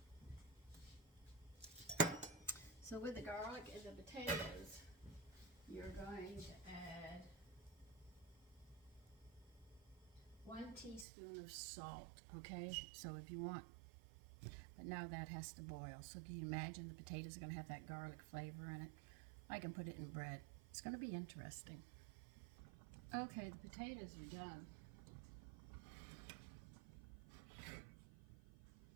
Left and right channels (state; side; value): drops out; left; at 11.1 s